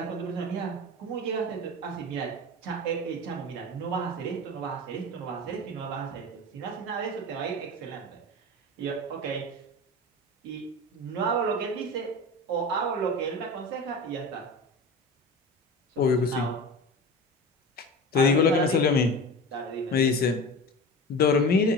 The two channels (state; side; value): normal; both; correlation 0.31